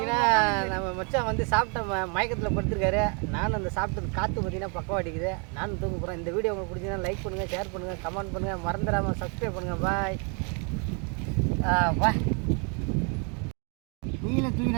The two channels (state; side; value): quieter; left; 36.1 dB